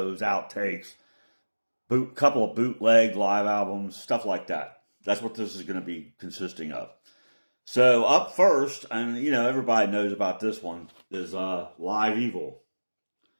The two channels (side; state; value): both; inverted; correlation -1.00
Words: outtakes, couple of bootleg live albums, stuff like that. That's what this is going to be consisting of. So up first, and everybody knows about this one, is Live Evil.